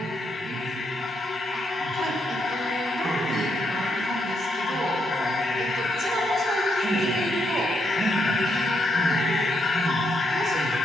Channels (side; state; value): both; normal; correlation 0.78